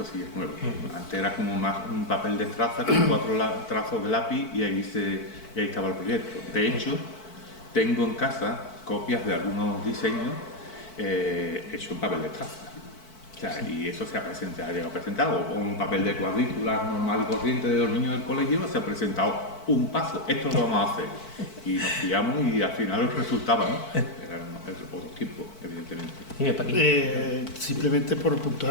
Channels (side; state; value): right; late; 4.5 ms